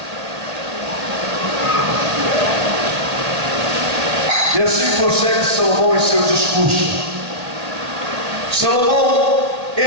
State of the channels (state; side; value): late; left; 1.9 ms